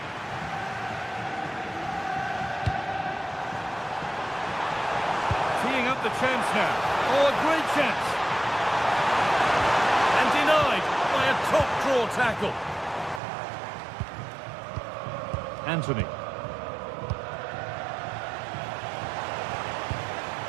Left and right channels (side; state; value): left; drops out; at 13.2 s